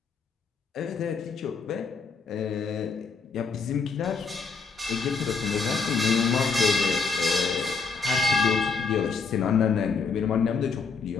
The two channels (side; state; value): right; quieter; 4.9 dB